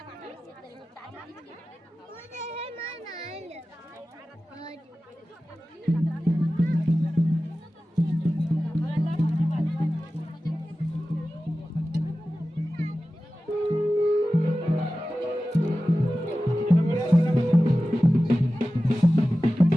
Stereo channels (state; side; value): normal; both; correlation 0.95